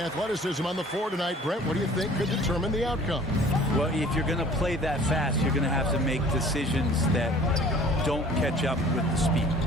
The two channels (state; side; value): normal; both; correlation 0.50